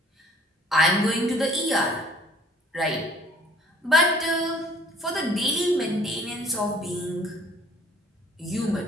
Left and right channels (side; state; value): both; normal; correlation 0.55